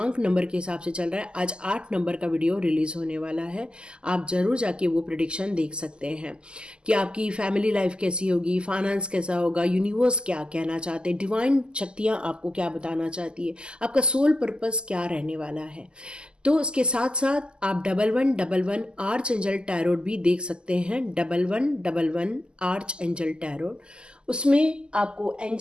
नंबर के हिसाब से चल रहा है। आज 8 नंबर का वीडियो रिलीज़ होने वाला है। आप ज़रूर जाके वो प्रेडिक्शन देख सकते हैं कि आपकी फैमिली लाइफ कैसी होगी, फाइनेंस कैसा होगा, यूनिवर्स क्या कहना चाहते हैं, डिवाइन शक्तियाँ आपको क्या बताना चाहती है, आपका सोल पर्पस क्या रहने वाला है। तो इसके साथ साथ आप 1111 आर्च एंजल टैरोट भी देख सकते हैं। 1111 आर्च एंजल टैरोट, उसमें आपको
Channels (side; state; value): left; late; 0.049 ms